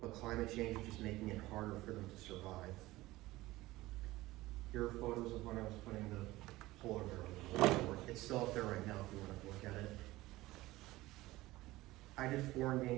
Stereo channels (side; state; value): left; quieter; 18.3 dB